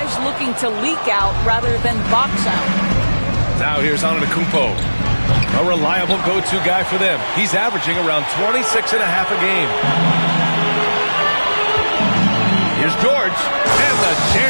looking to leak out rather than box out. Now here's Antetokounmpo. A reliable go-to guy for them. He's averaging around 26.5 a game. Here's George. And the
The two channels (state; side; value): inverted; both; correlation -1.00